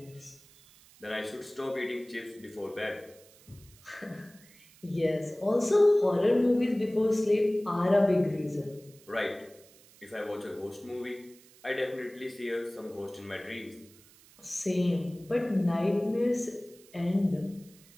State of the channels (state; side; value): noise; right; hiss, 25 dB below the sound